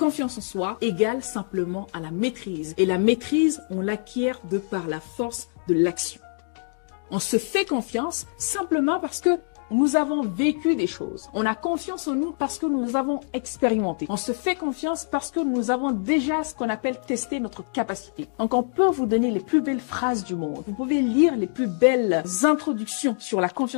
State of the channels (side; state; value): right; silent; 60 dB below the other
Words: en soi égale simplement à la maîtrise. Et la maîtrise, on l'acquiert de par la force de l'action. On se fait confiance simplement parce que nous avons vécu des choses. On a confiance en nous parce que nous avons expérimenté. On se fait confiance parce que nous avons déjà ce qu'on appelle testé notre capacité. Donc, on peut vous donner les plus belles phrases du monde. Vous pouvez lire les plus belles introductions sur la